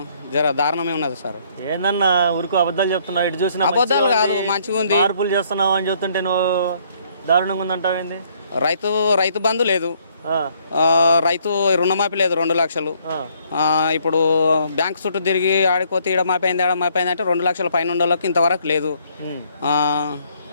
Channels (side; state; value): both; inverted; correlation -0.66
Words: జర దారుణమే ఉన్నది సార్. ఏందన్నా ఊరుకు అబద్ధాలు చెప్తున్నావు? ఇటు చూసిన అబద్ధాలు కాదు, మంచిగా ఉంది. మార్పులు చేస్తున్నావు అని చెప్తుంటే నువ్వు దారుణంగా ఉందంటావేంది? రైతు బంధు లేదు, రైతు రుణమాఫీ లేదు 2 లక్షలు. ఇప్పుడు బ్యాంక్ చుట్టూ తిరిగి ఆడిపోతే ఈడ మాపి అయింది అంటే 2 లక్షల పైన ఉండోళ్ళకి ఇంతవరకు లేదు.